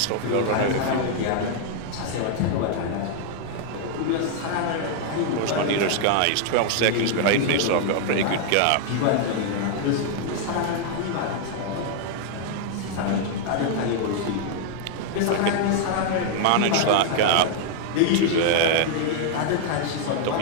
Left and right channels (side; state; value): both; different; correlation 0.00